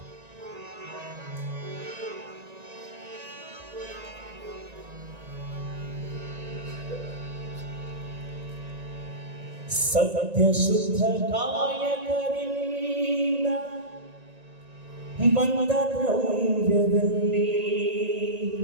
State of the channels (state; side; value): late; left; 1.9 ms